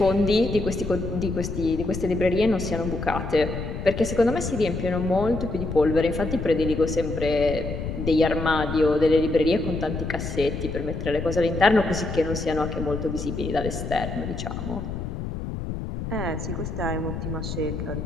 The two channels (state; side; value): noise; left; rumble, 5 dB below the sound